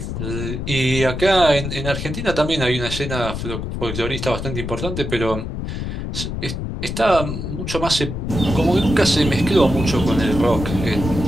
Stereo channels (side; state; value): left; noise; rumble, 5 dB below the sound